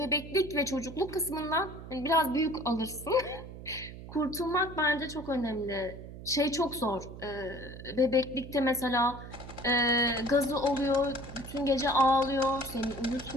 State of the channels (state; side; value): noise; right; hum, 13 dB below the sound